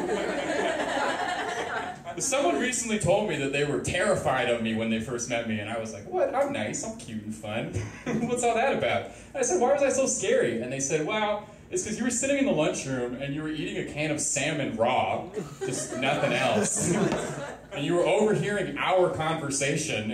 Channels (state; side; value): identical; both; correlation 1.00